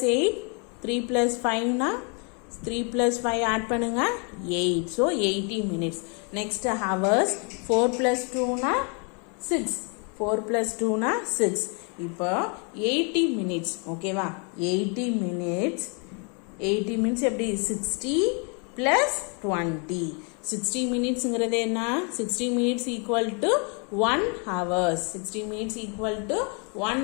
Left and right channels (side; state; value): right; quieter; 36.4 dB